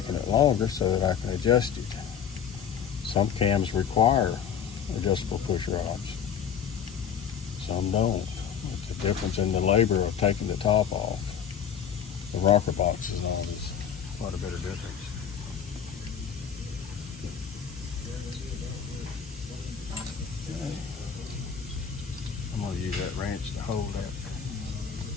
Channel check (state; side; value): quieter; right; 7.8 dB